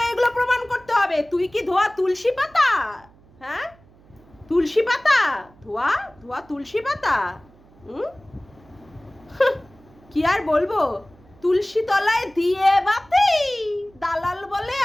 এগুলো প্রমাণ করতে হবে। তুই কি ধোয়া তুলসী পাতা? হ্যাঁ, তুলসী পাতা, ধোয়া ধোয়া তুলসী পাতা। কি আর বলবো, তুলসী তলায় দিয়ে বাতি, দালাল বলে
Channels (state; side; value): noise; right; hum, 27 dB below the sound